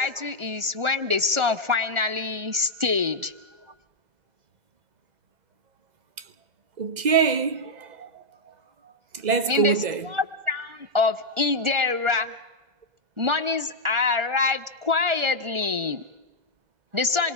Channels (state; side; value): late; left; 1.4 ms